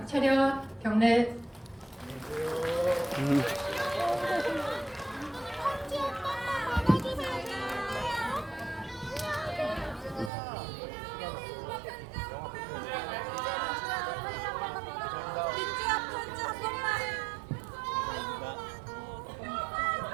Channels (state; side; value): drops out; left; at 10.3 s